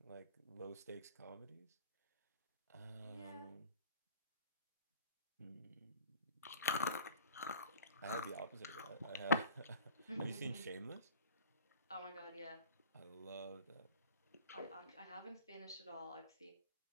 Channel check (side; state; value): both; inverted; correlation -0.43